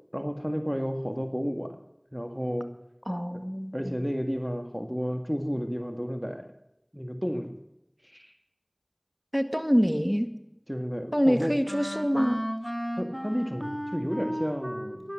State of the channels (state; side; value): identical; both; correlation 1.00